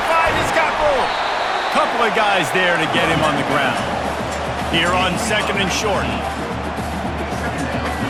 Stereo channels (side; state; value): both; identical; correlation 1.00